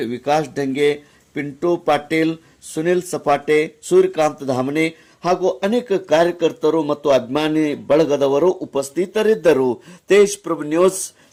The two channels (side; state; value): both; identical; correlation 1.00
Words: ವಿಕಾಸ್ ಢಂಗೆ, ಪಿಂಟು ಪಾಟೀಲ್, ಸುನಿಲ್ ಸಪಾಟೆ, ಸೂರ್ಯಕಾಂತ್ ಧಾಮನೆ ಹಾಗೂ ಅನೇಕ ಕಾರ್ಯಕರ್ತರು ಮತ್ತು ಅಭಿಮಾನಿ ಬಳಗದವರು ಉಪಸ್ಥಿತರಿದ್ದರು. ತೇಜ್ ಪ್ರಭು ನ್ಯೂಸ್,